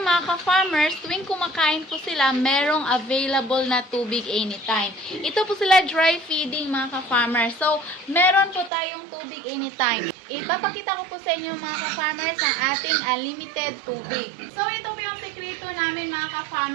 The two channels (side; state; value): left; drops out; at 8.7 s